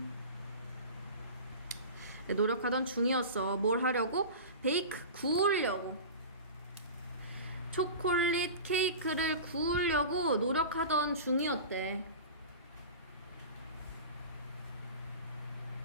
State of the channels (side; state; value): both; inverted; correlation -0.32